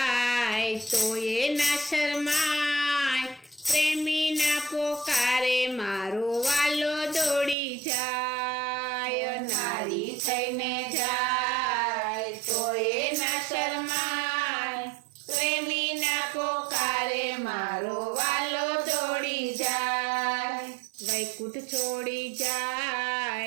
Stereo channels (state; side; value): drops out; left; at 7.6 s